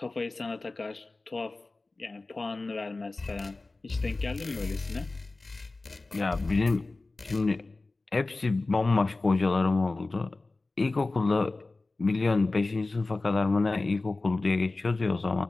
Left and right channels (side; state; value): right; quieter; 3.3 dB